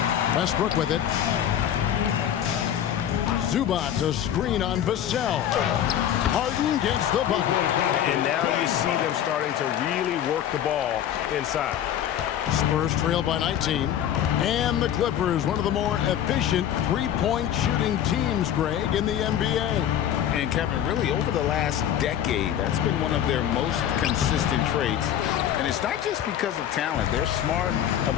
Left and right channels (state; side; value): quieter; right; 10.4 dB